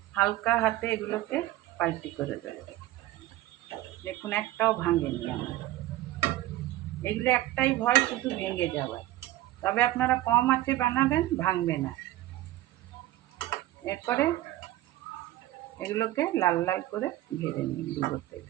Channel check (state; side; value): quieter; left; 15.7 dB